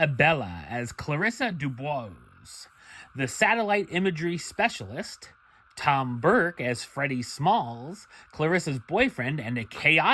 as Clarissa Dubois, the satellite imagery specialist, Tom Burke as Freddie Smalls, Clarissa's boyfriend and a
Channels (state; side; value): identical; both; correlation 1.00